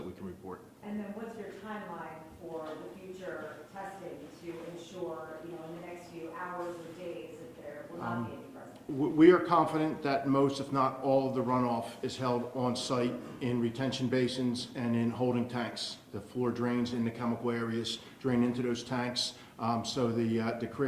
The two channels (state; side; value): identical; both; correlation 1.00